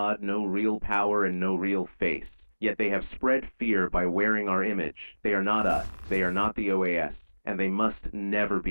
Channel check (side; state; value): both; inverted; correlation -1.00